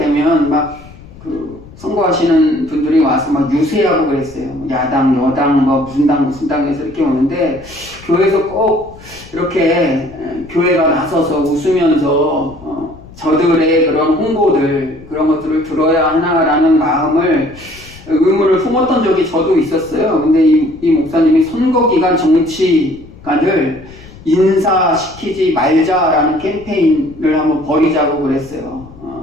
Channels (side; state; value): left; noise; rumble, 20 dB below the sound